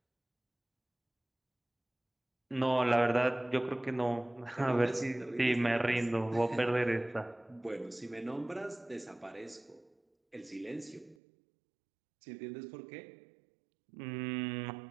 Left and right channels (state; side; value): drops out; left; at 11.2 s